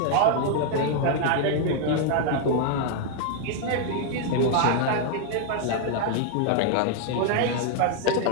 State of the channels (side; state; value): both; different; correlation 0.00